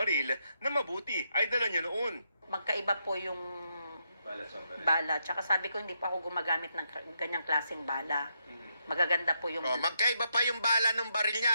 na mabuti ay dala niya noon. Magkaiba po yung bala. Tsaka sabi ko, hindi pa ako gumagamit ng ganyang klaseng bala. Magaganda po yung... Magkaiba pa yung bala ng baril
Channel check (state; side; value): inverted; both; correlation -0.80